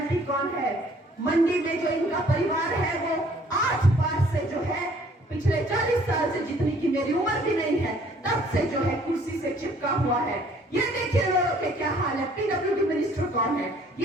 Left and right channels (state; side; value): normal; both; correlation 0.59